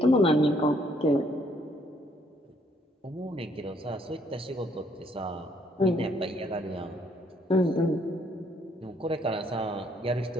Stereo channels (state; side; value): normal; both; correlation 0.68